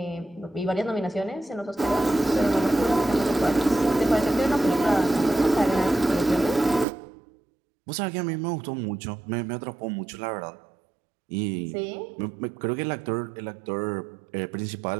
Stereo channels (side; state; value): left; drops out; at 6.9 s